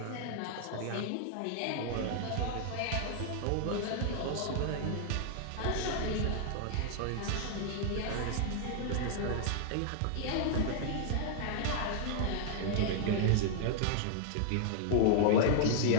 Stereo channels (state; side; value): different; both; correlation -0.01